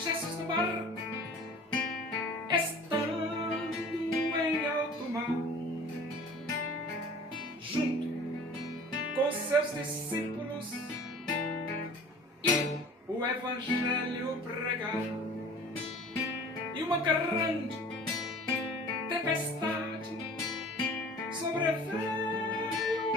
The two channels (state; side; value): normal; both; correlation 0.45